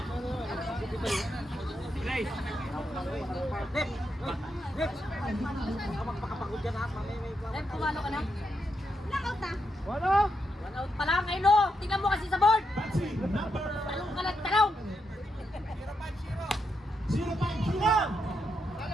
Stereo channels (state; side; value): normal; both; correlation 0.83